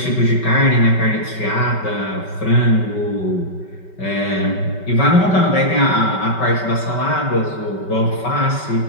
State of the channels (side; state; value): right; late; 5.2 ms